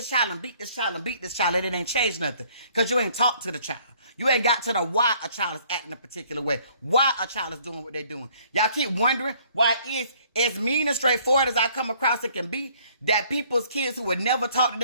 child and beat this child and beat this child, and it ain't changed nothing. Because you ain't talked to the child. You ain't got to the why a child is acting a particular way. Why a child is doing what they're doing. Y'all keep wondering why it's as mean and straightforward as I come across it can be, that people's kids who would never talk to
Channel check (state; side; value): inverted; both; correlation -0.61